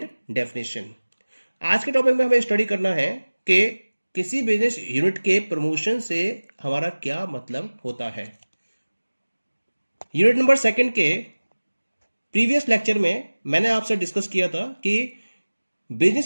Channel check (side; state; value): both; inverted; correlation -1.00